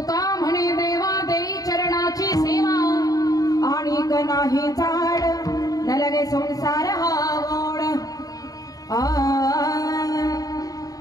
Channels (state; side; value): late; right; 0.18 ms